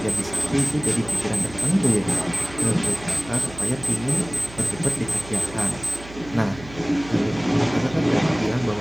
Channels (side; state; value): right; noise; hum, 16 dB below the sound